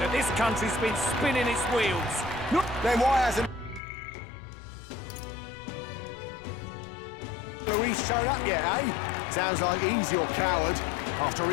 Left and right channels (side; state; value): right; drops out; at 3.8 s